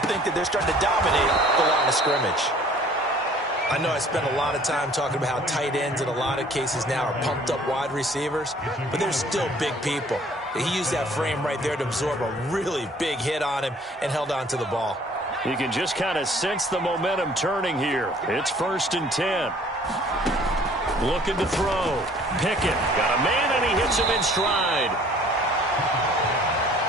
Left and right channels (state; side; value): normal; both; correlation 0.54